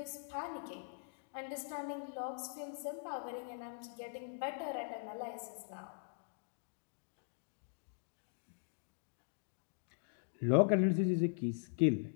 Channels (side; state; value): right; silent; digital silence